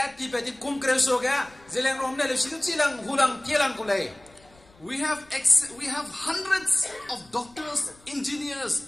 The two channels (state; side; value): noise; left; rumble, 28 dB below the sound